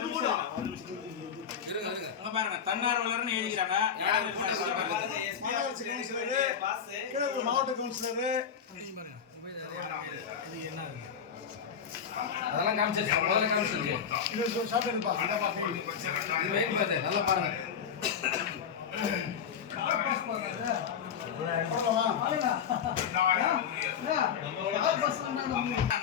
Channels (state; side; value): quieter; right; 7.5 dB